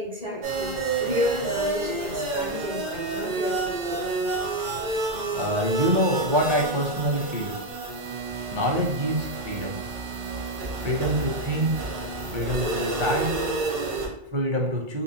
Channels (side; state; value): left; late; 2.0 ms